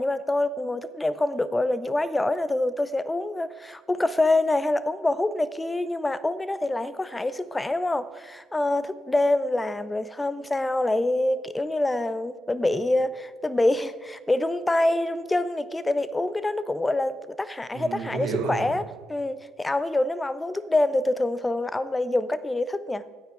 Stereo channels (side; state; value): both; normal; correlation 0.94